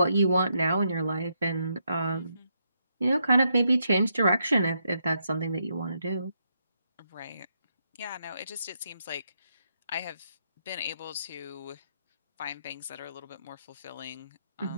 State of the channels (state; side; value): inverted; both; correlation -0.79